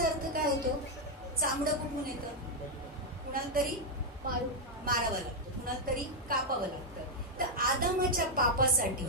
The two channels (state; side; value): normal; both; correlation -0.01